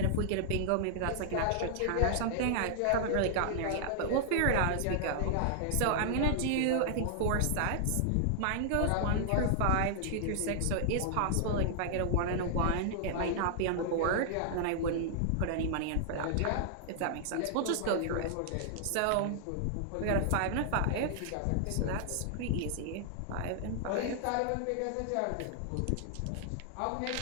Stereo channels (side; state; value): both; different; correlation -0.01